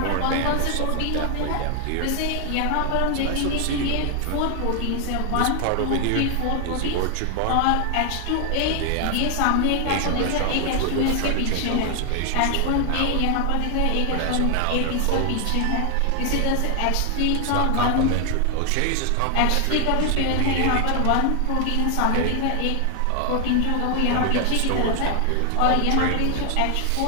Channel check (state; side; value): different; both; correlation 0.00